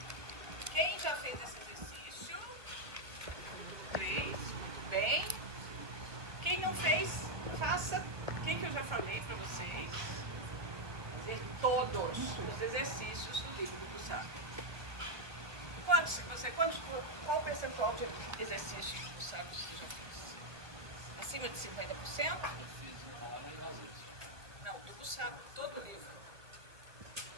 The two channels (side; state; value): left; late; 1.2 ms